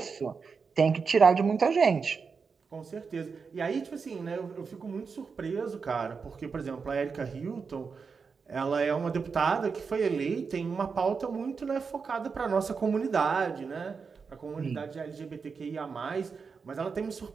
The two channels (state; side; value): quieter; left; 5.3 dB